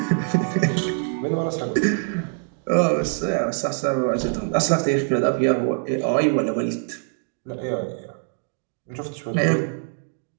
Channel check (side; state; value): left; silent; 60 dB below the other